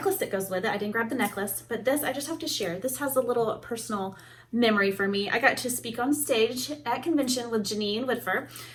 that goes with it. I didn't grab the necklace, but this I just have to share. This has a little personal memory for me. I got to speak on stage at convention with Janine Whitfer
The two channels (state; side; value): identical; both; correlation 1.00